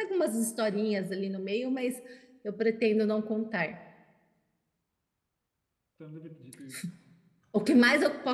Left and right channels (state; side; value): identical; both; correlation 1.00